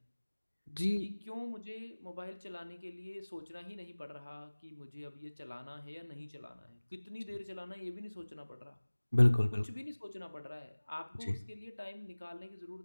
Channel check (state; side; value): inverted; both; correlation -1.00